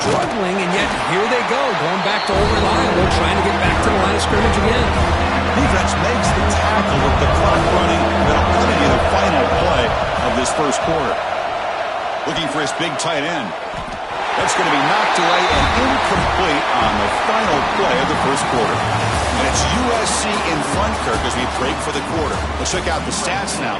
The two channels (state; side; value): identical; both; correlation 1.00